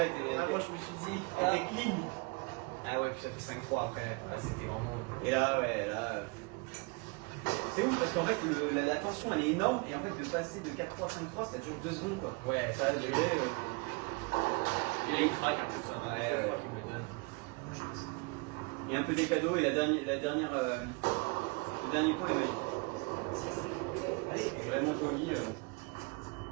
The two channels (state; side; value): quieter; left; 29.2 dB